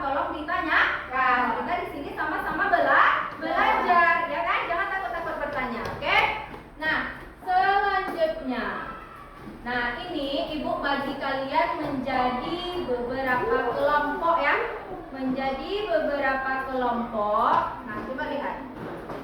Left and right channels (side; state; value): both; identical; correlation 1.00